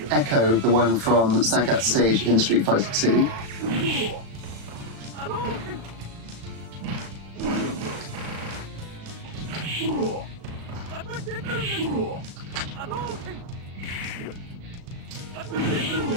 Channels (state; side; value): late; left; 36 ms